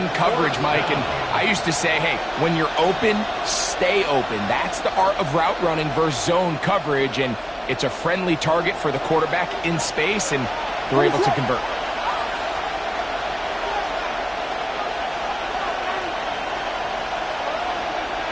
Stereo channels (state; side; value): identical; both; correlation 1.00